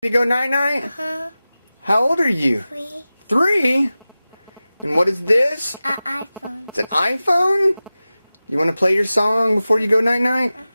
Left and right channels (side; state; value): both; inverted; correlation -0.96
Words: To go night-night? Uh-huh. How old are you? 3. 3? And what is this? An iPhone. It's an iPhone? You want to play your song before you go night-night?